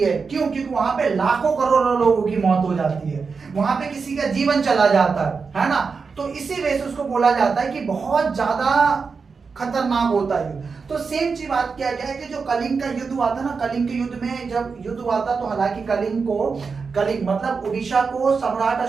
क्यों? क्योंकि वहां पे लाखों करोड़ों लोगों की मौत हो जाती है, वहां पे किसी का जीवन चला जाता है ना। तो इसी वजह से उसको बोला जाता है कि बहुत ज्यादा खतरनाक होता है युद्ध। तो सेम चीज बात किया गया है कि जो कलिंग का युद्ध हुआ था ना, कलिंग के युद्ध में जब युद्ध हुआ था तो हालांकि कलिंग मतलब उड़ीसा को सम्राट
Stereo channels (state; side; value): quieter; left; 5.1 dB